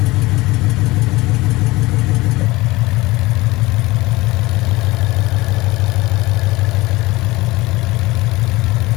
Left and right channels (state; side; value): quieter; right; 20.5 dB